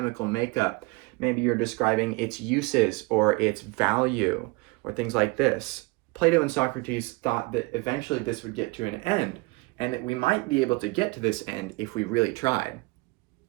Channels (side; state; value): left; quieter; 25.1 dB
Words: makeup. Maybe you're describing its uses or its value or things like this. Plato and Socrates thought that eventually this would get to an end, and that we might be able to get to this end if we really tried.